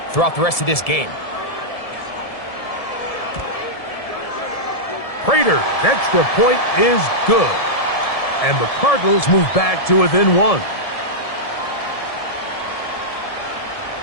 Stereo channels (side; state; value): right; late; 1.7 ms